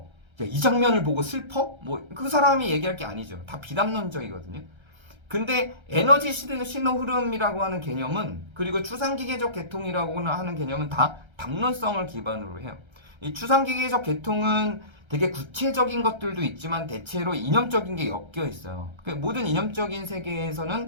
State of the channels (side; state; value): left; late; 1.3 ms